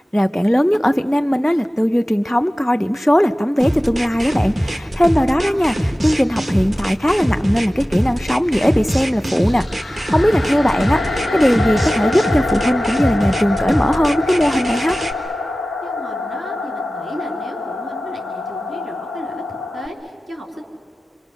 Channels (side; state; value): both; normal; correlation 0.96